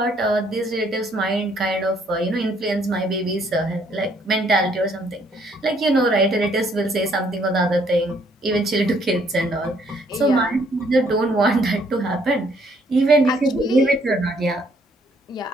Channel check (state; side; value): normal; both; correlation 0.66